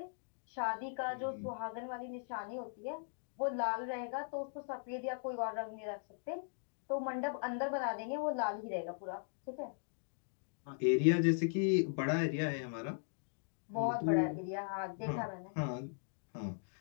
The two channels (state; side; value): silent; right; digital silence